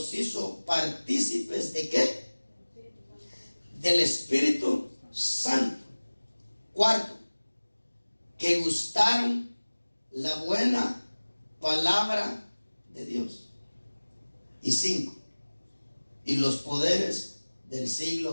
hizo partícipes de ¿qué? Del Espíritu Santo. Cuarto, que gustaron la buena palabra de Dios. Y cinco, y los poderes del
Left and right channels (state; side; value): inverted; both; correlation -1.00